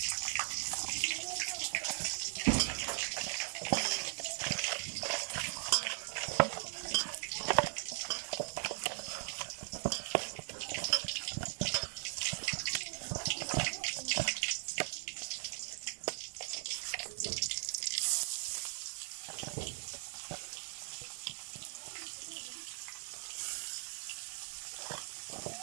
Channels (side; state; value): left; silent; 52 dB below the other